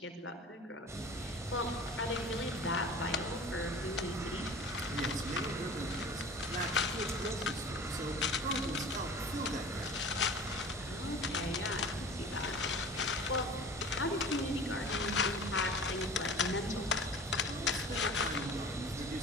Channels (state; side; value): normal; both; correlation 0.40